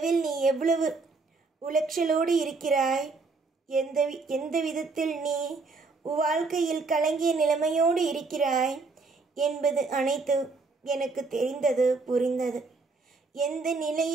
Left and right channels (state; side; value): quieter; left; 4.0 dB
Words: நீ எவ்வளவு உளைச்சலோடு இருக்கிறாய், எந்த விதத்தில் நீ வாழ்க்கையில் கலங்கிய நிலைமையோடு இருக்கிறாய் என்பது அனைத்து எனக்கு தெரிந்தது, புரிந்தது. எந்த